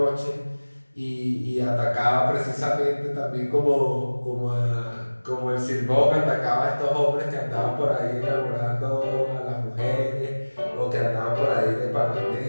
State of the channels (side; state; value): both; inverted; correlation -1.00